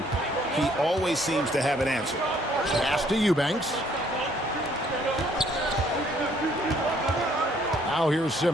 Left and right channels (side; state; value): both; normal; correlation 0.64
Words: he always seems to have an answer. Pass to Eubanks. Now here's